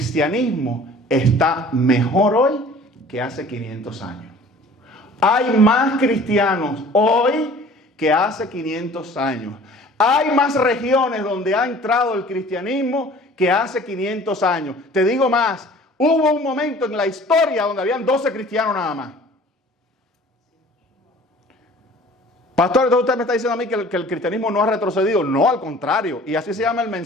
está mejor hoy que hace 500 años. Hay más cristianos hoy que hace 500 años. Hay más regiones donde ha entrado el cristianismo que hace 500 años. Te digo más, hubo un momento en la historia donde habían 12 cristianos nada más. Pastor, entonces usted me está diciendo a mí que el cristianismo no ha retrocedido. No, al contrario. Y así se llama el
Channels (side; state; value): both; normal; correlation 0.48